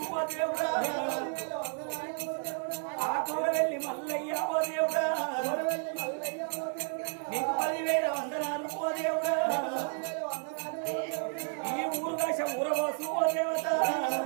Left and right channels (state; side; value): silent; left; 57 dB below the other